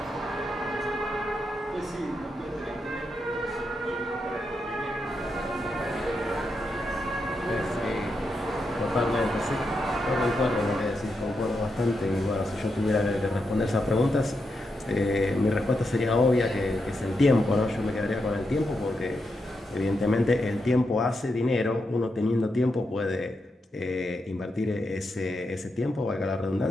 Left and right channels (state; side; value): normal; both; correlation 0.84